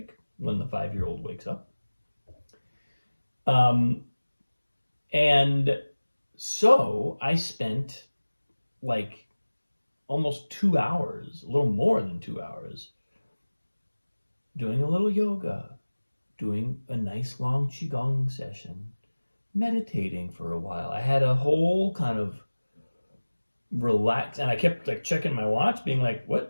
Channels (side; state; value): both; inverted; correlation -1.00